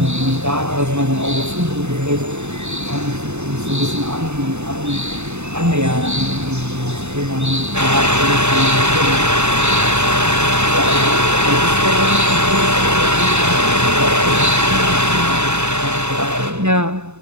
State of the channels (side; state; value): left; late; 0.82 ms